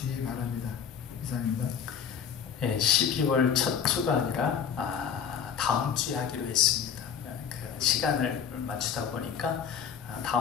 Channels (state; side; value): quieter; right; 7.7 dB